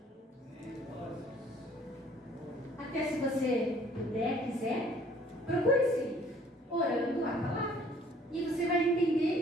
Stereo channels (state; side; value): normal; both; correlation 0.57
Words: Até se você puder, quiser, procure esse livro, orando a palavra. E você vai